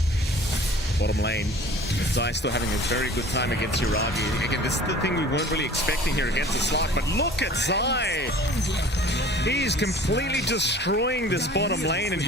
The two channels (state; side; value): normal; both; correlation 0.46